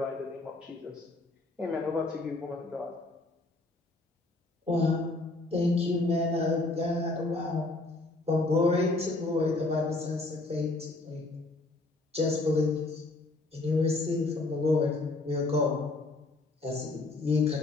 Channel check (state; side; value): quieter; right; 3.1 dB